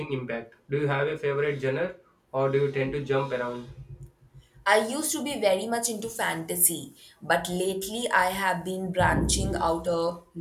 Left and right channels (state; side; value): identical; both; correlation 1.00